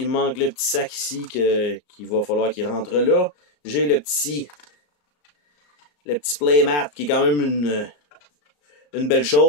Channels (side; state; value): right; late; 34 ms